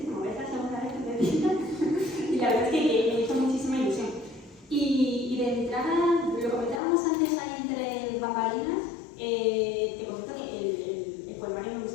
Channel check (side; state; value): right; drops out; at 6.8 s